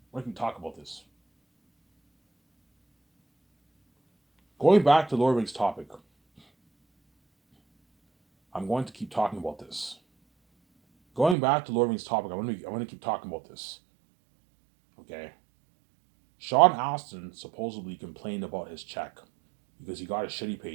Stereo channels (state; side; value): drops out; left; at 11.4 s